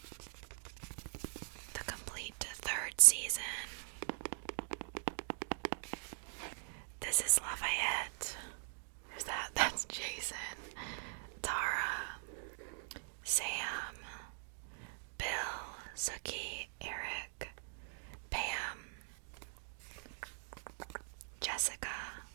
season. This is Lafayette. Who's that? That's Jason. Tara. Sam. Bill. Sookie. Eric. Pam. Jessica.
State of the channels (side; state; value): left; silent; digital silence